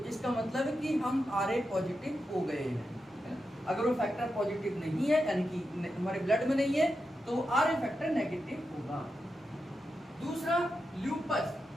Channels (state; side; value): normal; both; correlation 0.88